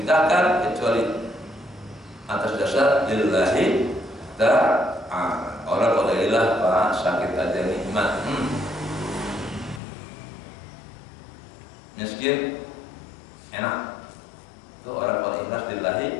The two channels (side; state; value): right; drops out; at 9.8 s